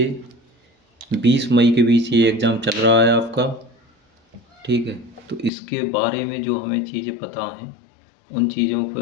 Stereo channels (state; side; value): drops out; right; at 5.5 s